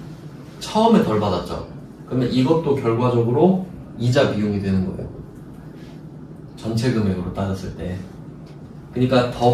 처음에 덜 받았죠. 그러면 이것도 결과적으로 이자 비용이 되는 거예요. 전체 금액으로 따졌을 때. 그러니까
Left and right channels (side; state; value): both; identical; correlation 1.00